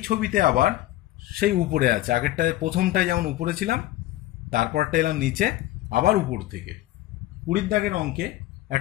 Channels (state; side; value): quieter; right; 15.7 dB